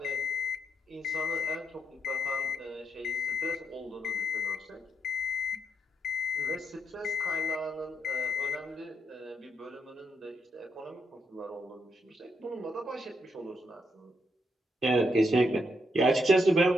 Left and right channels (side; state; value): both; normal; correlation 0.79